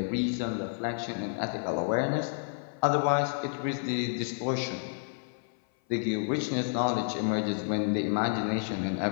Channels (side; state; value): right; silent; 55 dB below the other